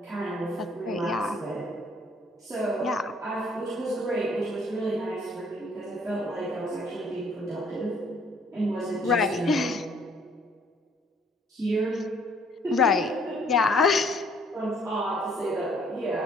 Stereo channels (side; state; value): both; normal; correlation 0.61